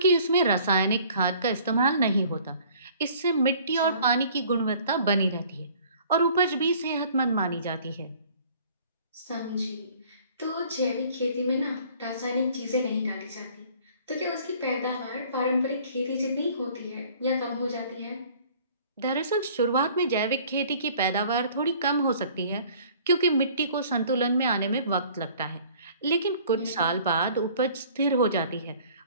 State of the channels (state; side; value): inverted; both; correlation -0.53